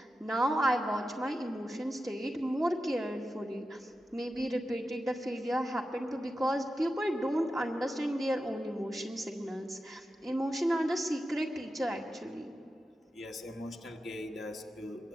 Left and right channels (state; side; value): normal; both; correlation 0.91